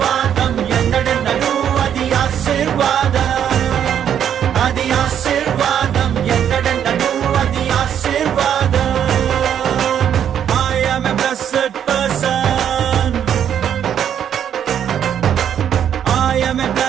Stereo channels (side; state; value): left; quieter; 9.2 dB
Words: ఎన్నడెన్నడూ అది ఆశీర్వాదం, అది ఆశీర్వాదం, ఎన్నడెన్నడూ అది ఆశీర్వాదం. I am a blessed person, I am a